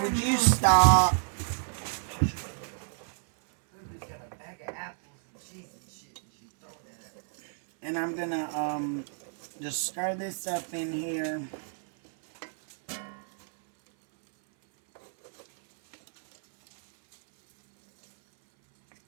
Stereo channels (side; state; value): left; silent; 58 dB below the other